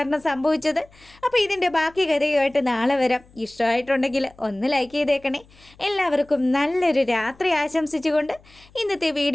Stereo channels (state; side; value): noise; left; hum, 27 dB below the sound